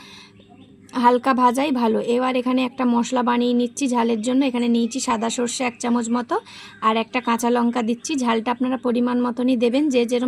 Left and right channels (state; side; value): identical; both; correlation 1.00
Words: হালকা ভাজাই ভালো। এবার এখানে একটা মশলা বানিয়ে নিচ্ছি ঝালের জন্য। এখানে নিয়েছি সাদা সর্ষে 1 চামচ মতো, আর একটা কাঁচা লঙ্কা দিচ্ছি। ঝালটা আপনারা পরিমাণ মতনই দেবেন, যে